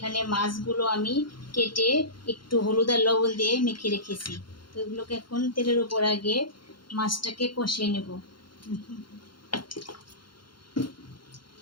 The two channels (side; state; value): right; late; 0.72 ms